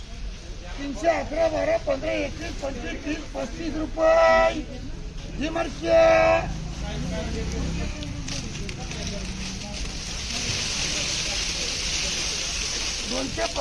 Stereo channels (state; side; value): identical; both; correlation 1.00